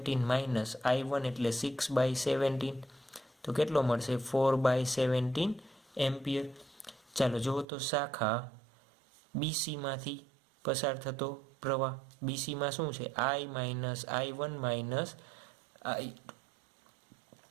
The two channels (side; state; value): left; drops out; at 7.7 s